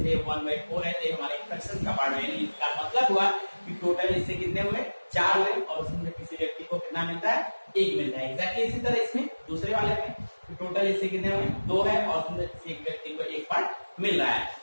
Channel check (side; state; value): both; inverted; correlation -1.00